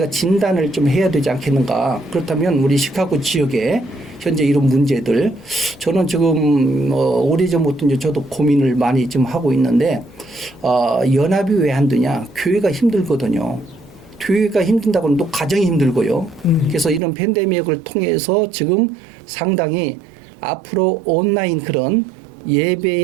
진단을 좀 해야 되지 않겠는가? 그렇다면 우리 시카고 지역에 현재 이런 문제들, 저는 지금 오래전부터 이제 저도 고민을 많이 좀 하고 있는데 연합이 왜 안 되냐? 교회가 힘들거든요. 교회가 힘든다고는 또 가정이 힘들고요. 그래서 이런 팬데믹을 통해서 지금 상당히 앞으로 온라인 그런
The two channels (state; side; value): drops out; left; at 17.0 s